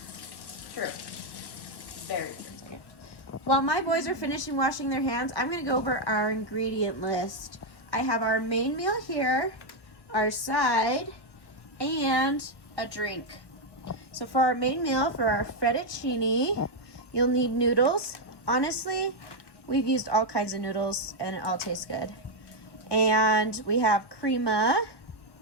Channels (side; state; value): right; late; 1.1 ms